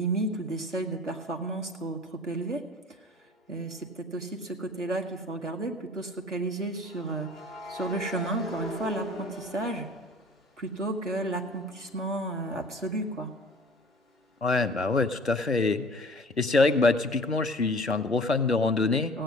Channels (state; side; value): normal; both; correlation 0.47